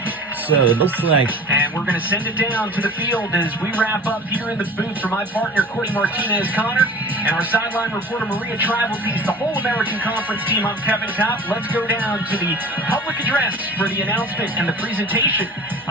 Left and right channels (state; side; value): normal; both; correlation 0.41